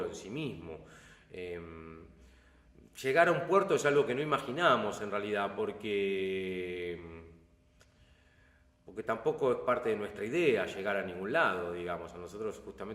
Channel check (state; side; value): identical; both; correlation 1.00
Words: en sí mismo. Llegar a un puerto es algo que no imaginamos en realidad, porque tampoco es parte de nuestra idea llegar a ningún lado, digamos. A nosotros